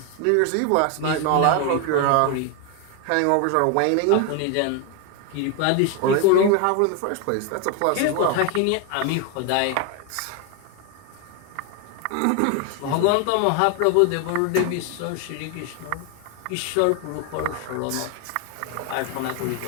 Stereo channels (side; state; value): both; different; correlation 0.01